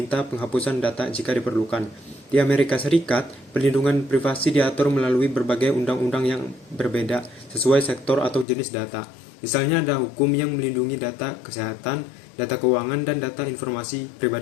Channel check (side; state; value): right; drops out; at 8.5 s